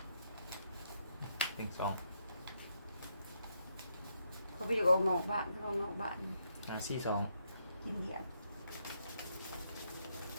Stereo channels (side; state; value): both; inverted; correlation -0.77